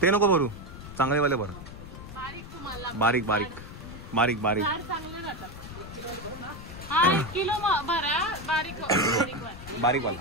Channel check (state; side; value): noise; left; rumble, 13 dB below the sound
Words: ते नको भरू, चांगले वाले भर. बारीक बारीक बारीक बारीक बारीक वाला